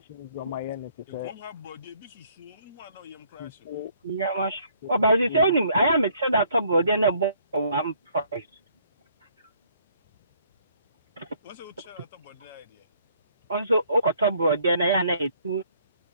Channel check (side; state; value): both; inverted; correlation -0.63